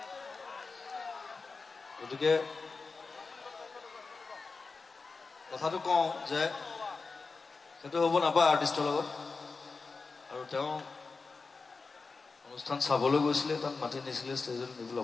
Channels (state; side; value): quieter; right; 4.3 dB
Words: গতিকে কথাটো কওঁ যে সেইটো হ'ব নাপায় আৰ্টিষ্টৰ লগত আৰু তেওঁ অনুষ্ঠান চাবলৈ গৈছিলে তাত মাতি নিছিলে ষ্টেজত নিবলৈ